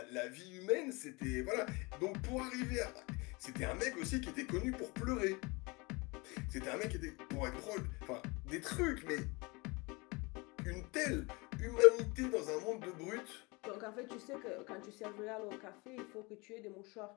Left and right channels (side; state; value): right; quieter; 26.4 dB